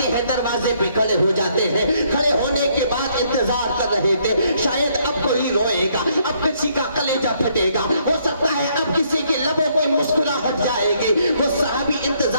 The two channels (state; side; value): inverted; both; correlation -0.69